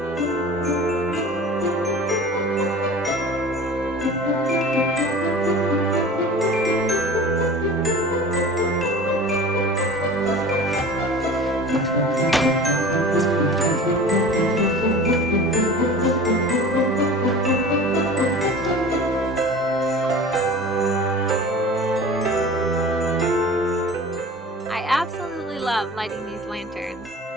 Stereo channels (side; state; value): both; normal; correlation 0.39